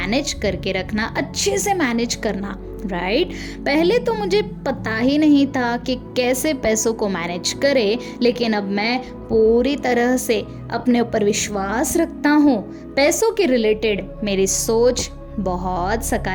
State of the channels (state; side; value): identical; both; correlation 1.00